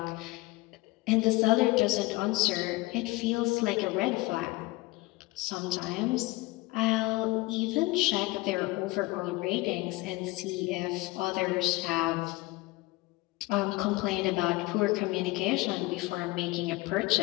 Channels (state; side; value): quieter; right; 21.0 dB